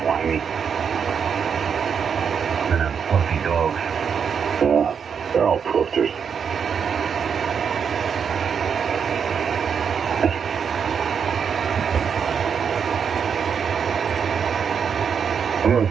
Whiny. And them fluffy dogs. Yeah, they're all poofers. I'm going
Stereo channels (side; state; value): left; quieter; 6.9 dB